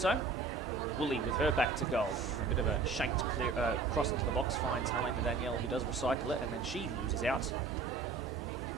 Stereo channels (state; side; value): quieter; left; 4.4 dB